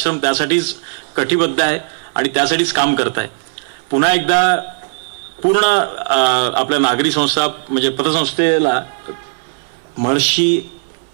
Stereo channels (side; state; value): left; silent; 64 dB below the other